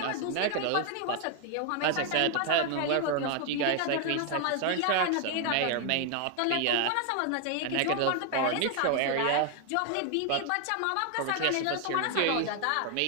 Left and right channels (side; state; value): both; different; correlation 0.00